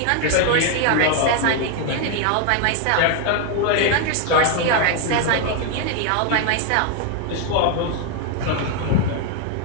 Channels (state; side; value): different; both; correlation 0.01